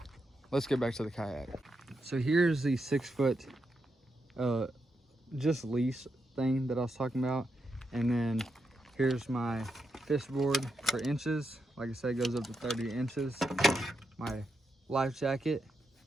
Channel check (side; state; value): both; normal; correlation 0.84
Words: let's get back to the kayak. So here's the 6-foot just leash thing that I was talking about, and then here's my fish board for inches. Like I said, it goes up to 30 inches. My life jacket,